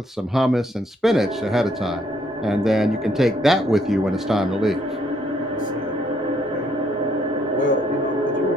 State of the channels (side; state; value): both; normal; correlation 0.69